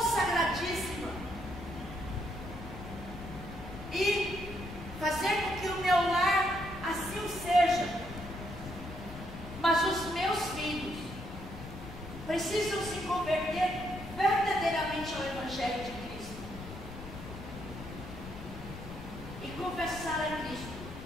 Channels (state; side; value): noise; left; rumble, 11 dB below the sound